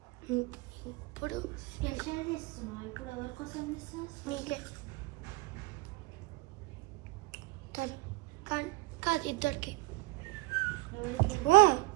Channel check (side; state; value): left; quieter; 21.0 dB